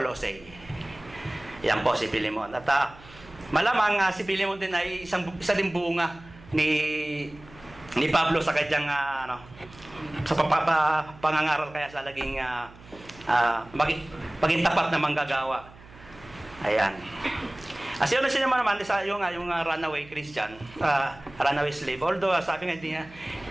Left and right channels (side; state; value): right; noise; hum, 21 dB below the sound